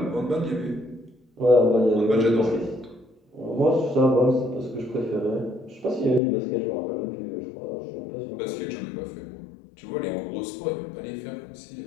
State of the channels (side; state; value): right; drops out; at 6.2 s